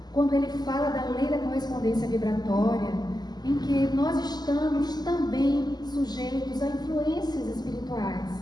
quando ele fala da lei da correspondência vibratória, em que nós estamos também sujeitos a influências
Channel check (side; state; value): right; late; 0.20 ms